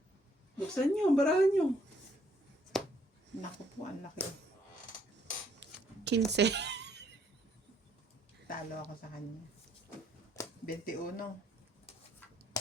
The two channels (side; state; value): both; normal; correlation 0.67